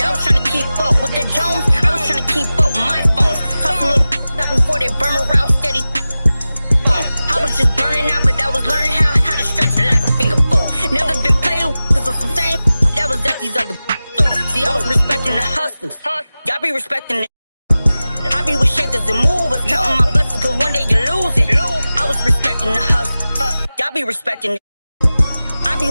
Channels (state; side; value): inverted; both; correlation -0.96